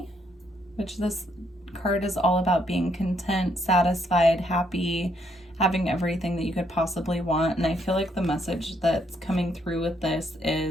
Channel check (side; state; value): both; normal; correlation 0.72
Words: which this card is all about being content, satisfied, happy, having everything that you could possibly want. And I feel like the message that's coming through with this